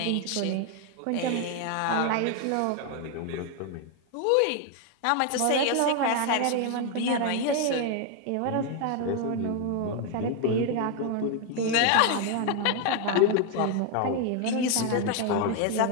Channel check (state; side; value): different; both; correlation 0.01